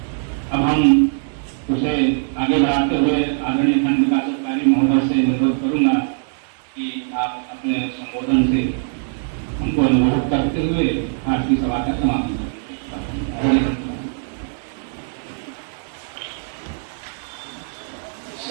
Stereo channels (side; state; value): left; silent; digital silence